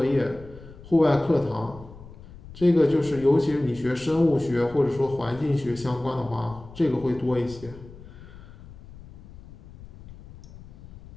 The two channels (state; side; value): noise; left; rumble, 18 dB below the sound